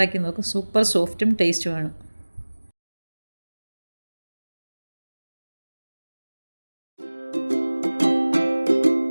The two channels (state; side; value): inverted; both; correlation -1.00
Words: നോക്കും. സൂപ്പർ സോഫ്റ്റും ടേസ്റ്റുമാണ്.